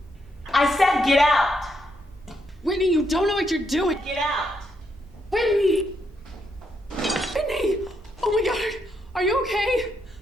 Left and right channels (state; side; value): normal; both; correlation 0.78